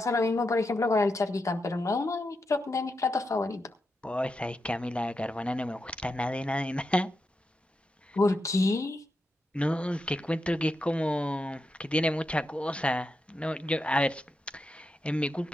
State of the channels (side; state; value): both; normal; correlation 0.86